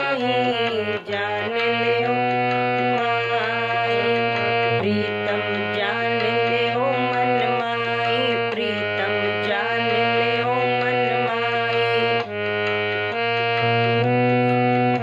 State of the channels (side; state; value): both; identical; correlation 1.00